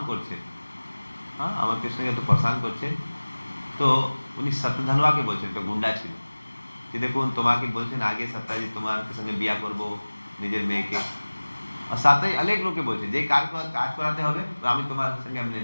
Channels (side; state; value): both; inverted; correlation -1.00